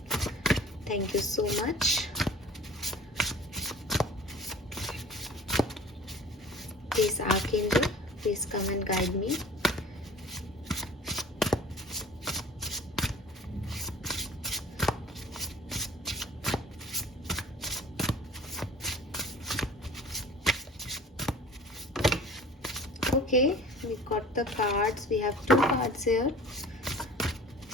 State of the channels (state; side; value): normal; both; correlation 0.46